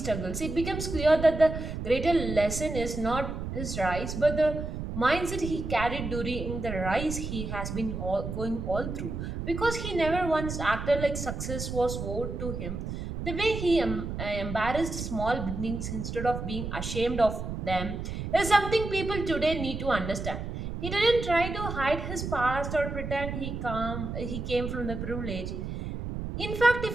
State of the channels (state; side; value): noise; right; rumble, 5 dB below the sound